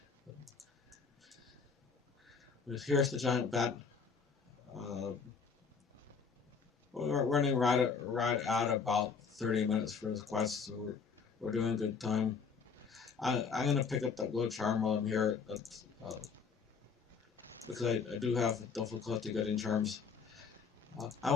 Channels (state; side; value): quieter; right; 5.7 dB